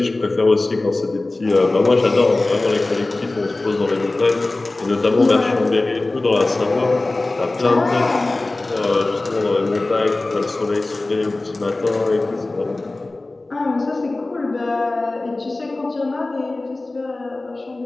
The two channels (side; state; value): right; quieter; 3.0 dB